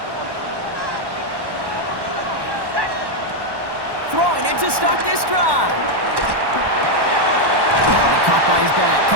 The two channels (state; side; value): late; left; 1.1 ms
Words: Throwing it to start this drive. He caught by his back.